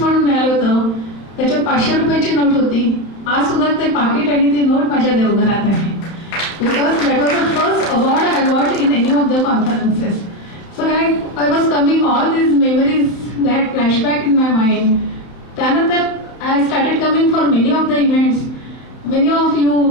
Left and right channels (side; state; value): right; late; 32 ms